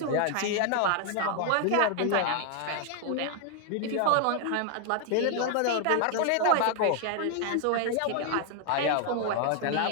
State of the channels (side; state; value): both; different; correlation 0.00